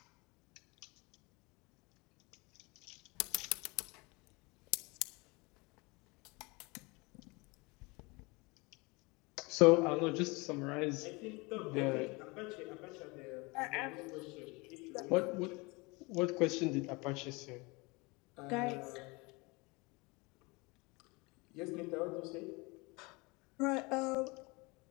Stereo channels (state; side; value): quieter; right; 26.2 dB